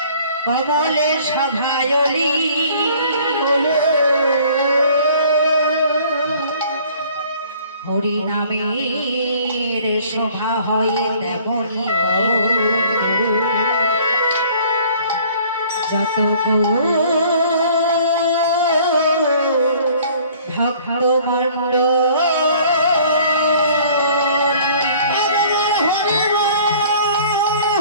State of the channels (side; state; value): both; inverted; correlation -0.54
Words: কমলে সভায়লি হরি নামের শোভা হয় তেমনি যত ভক্তমণ্ডল